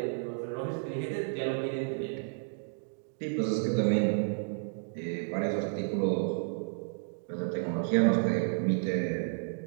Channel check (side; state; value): left; silent; digital silence